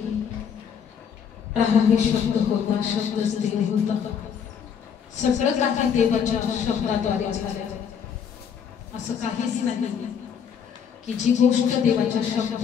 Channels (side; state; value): right; quieter; 7.5 dB